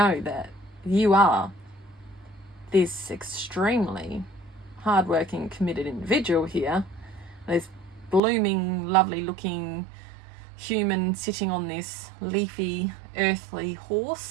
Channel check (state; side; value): drops out; left; at 8.2 s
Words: that you are this extremely hardworking, committed individual here. This blooming, lovely looking human sitting on this leafy, earthly